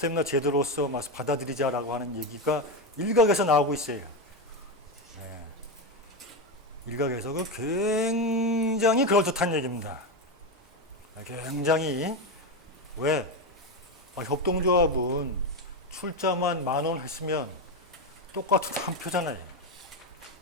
제도로서 받아들이자라고 하는 얘기가 일각에서 나오고 있어요. 일각에서 그 굉장히 그럴듯한 얘기입니다. 굉장히 왜? 협동조합은 출자만 10,000원 했으면 똑같은 한 표잖아요.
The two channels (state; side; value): normal; both; correlation 0.13